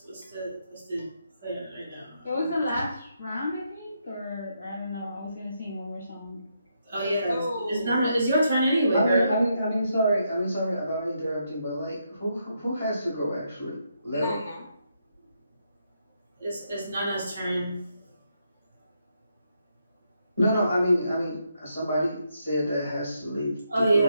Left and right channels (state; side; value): inverted; both; correlation -0.79